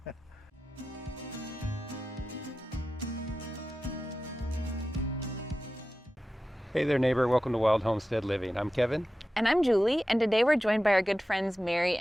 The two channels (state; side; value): normal; both; correlation 0.93